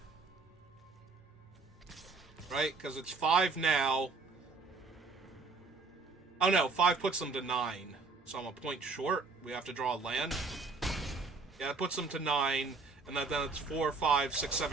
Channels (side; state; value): left; quieter; 4.2 dB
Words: Right, because it's 5 now. Oh no, 5 puts them to 9. So I'm a point short. We have to draw a land. Yeah, it puts them to 9. And then it's 4, 5, 6,